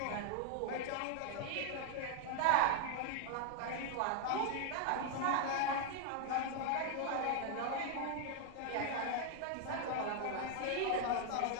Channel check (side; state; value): both; different; correlation 0.00